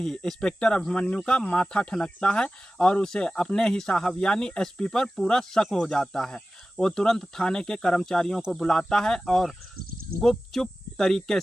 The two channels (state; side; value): normal; both; correlation 0.96